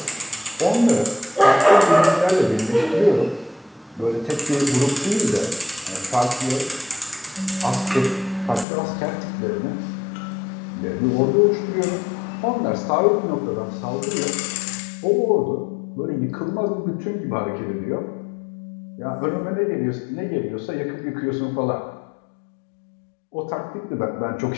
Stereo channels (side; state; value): right; drops out; at 8.7 s